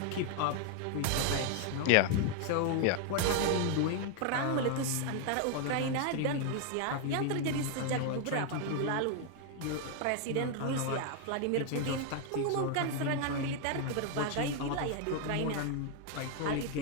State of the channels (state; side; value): different; both; correlation 0.00